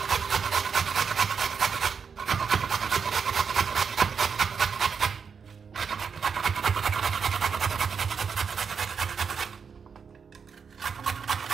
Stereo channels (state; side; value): quieter; left; 6.2 dB